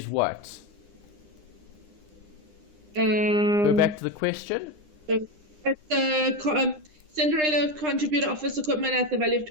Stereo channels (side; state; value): left; late; 9.9 ms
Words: what? Go back to the question. At the Cinderella contributor office equipment at the value of